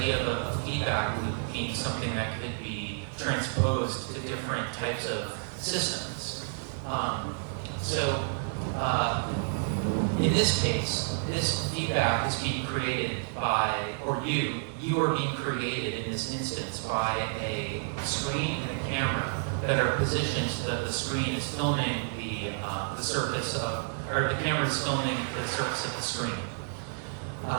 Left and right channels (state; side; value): silent; left; digital silence